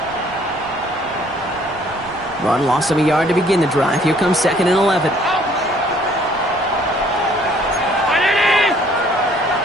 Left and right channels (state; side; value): noise; right; rumble, 23 dB below the sound